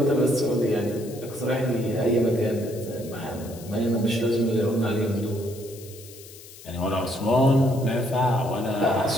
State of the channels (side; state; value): left; noise; hiss, 18 dB below the sound